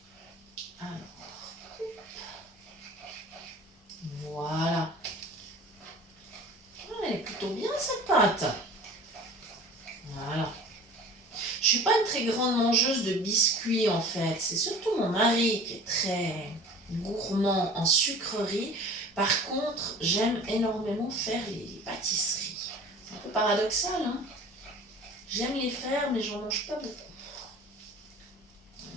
Alors, voilà. Elle est plutôt bien cette pâte. Voilà. Je suis pas une très grande mangeuse de biscuits en fait. C'est surtout mon mari qui est très gourmand en sucreries. Par contre, j'aime énormément faire les pâtisseries. C'est un peu paradoxal, hein. J'aime les faire, mais j'en mange pas beaucoup.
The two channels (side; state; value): both; normal; correlation 0.42